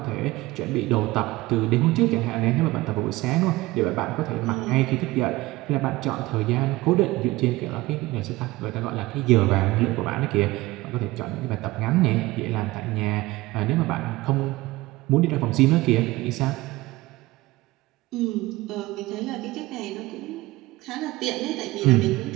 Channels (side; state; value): left; quieter; 19.4 dB